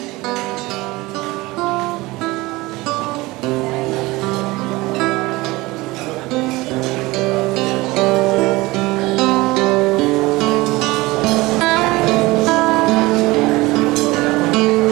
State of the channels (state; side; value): quieter; left; 21.0 dB